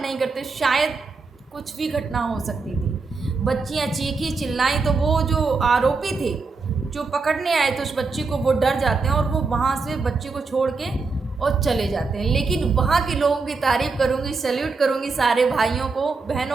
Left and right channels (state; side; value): quieter; left; 4.3 dB